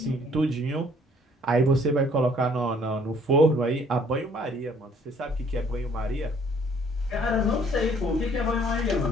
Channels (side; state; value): both; normal; correlation 0.60